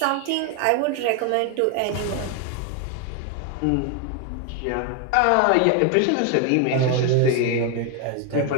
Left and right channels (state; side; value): different; both; correlation 0.01